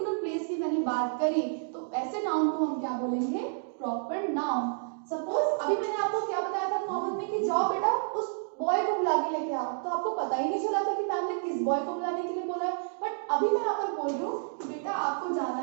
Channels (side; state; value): left; silent; digital silence